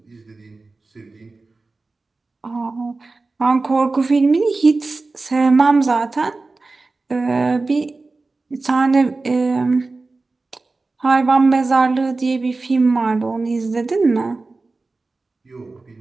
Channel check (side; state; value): left; quieter; 3.6 dB